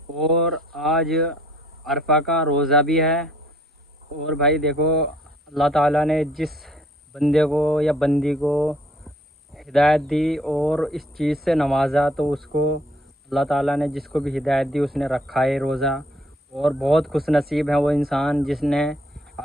اور آج عرفہ کا روزہ بھی ہے۔ اور بھائی دیکھو، اللہ تعالیٰ نے جس بندے کو یا بندی کو ہدایت دی اور اس چیز سے نوازا، تو اس کو اللہ تعالیٰ نے جس کو بھی ہدایت دی اس نے رکھا ہے روزہ۔ اور بہت خوش نصیب ہے وہ انسان جس نے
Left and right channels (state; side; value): normal; both; correlation 0.62